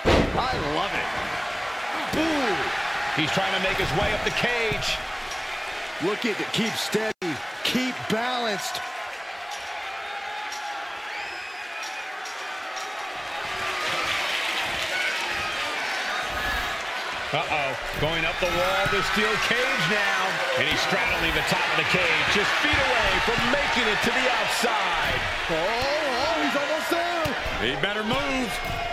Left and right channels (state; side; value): identical; both; correlation 1.00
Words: I love it. Ooh. He's trying to make his way up the cage. Looking to keep steady, keep balanced. Uh-oh. Going up the wall, the steel cage now. And he's straddling the top of the cage, just feet away from making it to the outside. Oh, he's almost there. He better move.